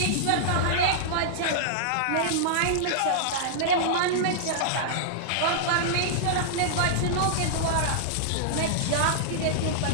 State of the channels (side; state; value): both; different; correlation -0.02